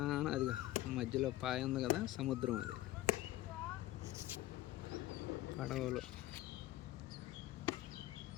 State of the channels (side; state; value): right; quieter; 15.9 dB